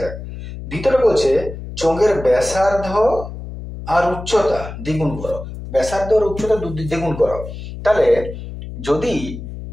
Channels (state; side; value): noise; left; hum, 10 dB below the sound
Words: যাক। দ্বিতীয়টা বলছে চোঙের ব্যাসার্ধ আর উচ্চতা দ্বিগুণ করো। ব্যাসার্ধ আর উচ্চতা দ্বিগুণ করো। তাহলে যদি